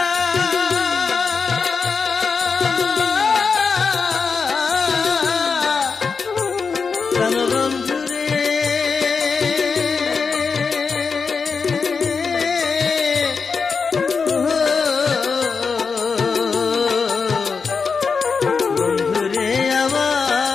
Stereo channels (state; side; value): quieter; right; 5.2 dB